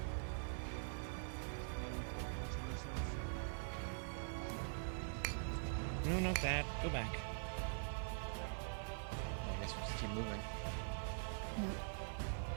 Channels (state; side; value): silent; left; digital silence